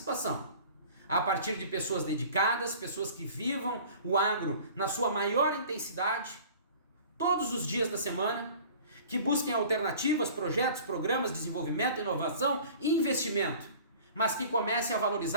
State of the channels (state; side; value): inverted; both; correlation -0.45